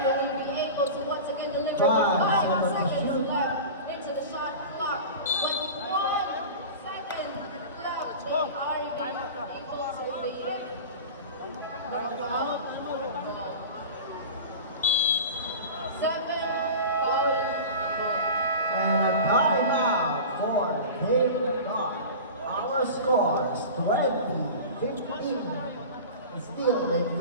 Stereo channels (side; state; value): both; inverted; correlation -0.33